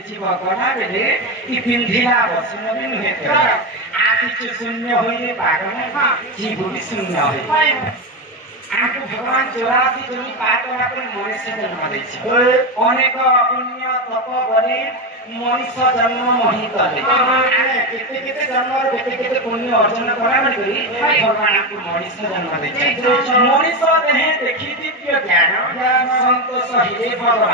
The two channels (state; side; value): normal; both; correlation 0.14